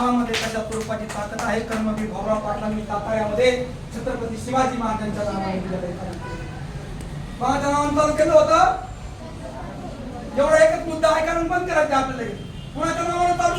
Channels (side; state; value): both; identical; correlation 1.00